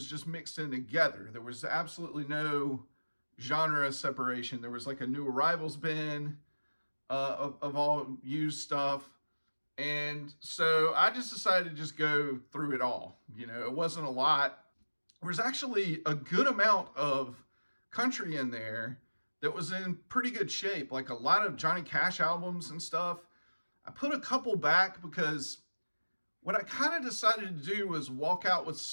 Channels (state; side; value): inverted; both; correlation -1.00